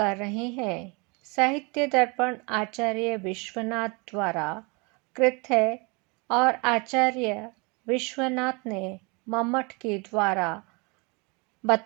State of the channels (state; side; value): quieter; left; 29.7 dB